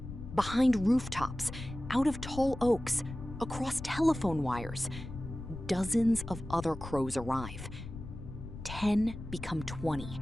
behind rooftops, out of tall oaks, across telephone wires, dozens of other crows arrive. 10 become 20.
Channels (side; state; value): left; noise; rumble, 10 dB below the sound